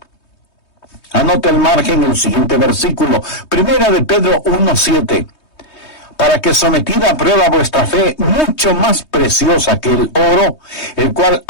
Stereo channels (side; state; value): right; late; 3.2 ms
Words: Anota el margen en el siguiente versículo, 1 de Pedro 1:7. Para que sometida a prueba vuestra fe, mucho más preciosa que el oro, el cual,